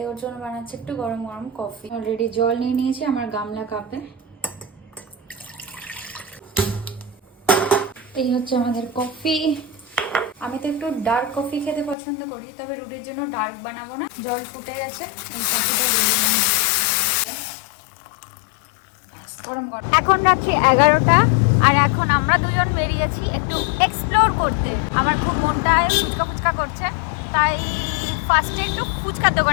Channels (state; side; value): drops out; right; at 12.0 s